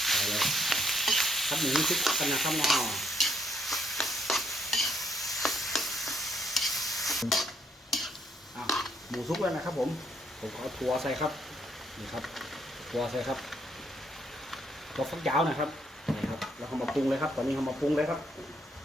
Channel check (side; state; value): both; normal; correlation 0.71